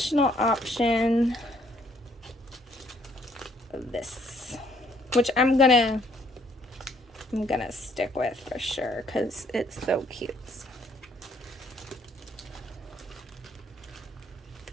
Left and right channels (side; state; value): both; normal; correlation 0.66